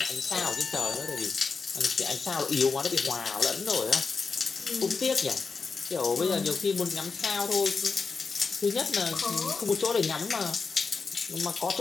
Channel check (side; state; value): right; quieter; 4.8 dB